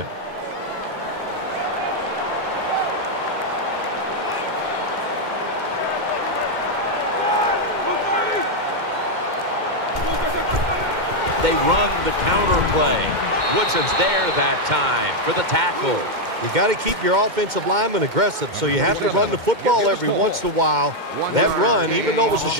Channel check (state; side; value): late; left; 2.1 ms